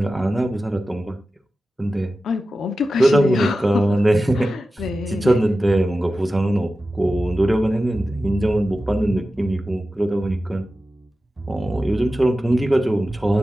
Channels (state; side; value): normal; both; correlation 0.94